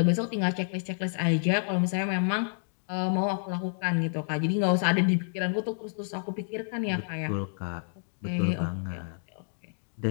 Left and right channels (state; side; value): silent; right; digital silence